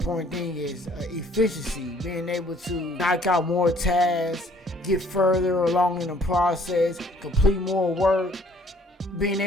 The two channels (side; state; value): both; normal; correlation 0.59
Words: thing, is efficiency, being able to knock out more tasks, get further along in the process, complete more work. Being